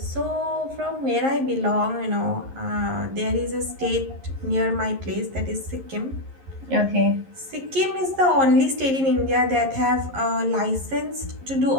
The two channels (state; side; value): late; left; 11 ms